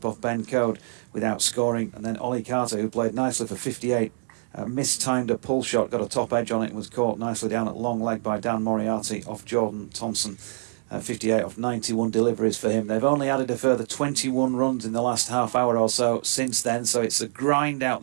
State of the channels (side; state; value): left; silent; digital silence